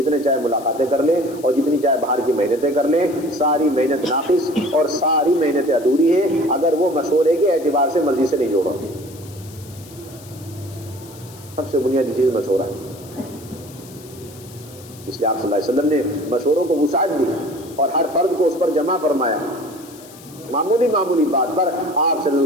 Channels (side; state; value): left; noise; hiss, 21 dB below the sound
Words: چاہے ملاقاتیں کر لے اور جتنی چاہے باہر کی محنتیں کر لے، ساری محنت ناقص اور ساری محنتیں ادھوری ہیں اگر وہ مشورے کے اعتبار سے مسجد سے نہیں جوڑا. سب سے بنیادی چیز مشورہ ہے. اس لیے آپ صلی اللہ علیہ وسلم نے مشوروں کو وسعت دی اور ہر فرد کو اس پر جمع فرمایا. معمولی بات پر آپ صلی